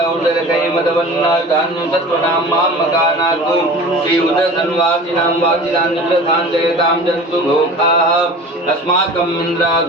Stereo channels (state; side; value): normal; both; correlation 0.38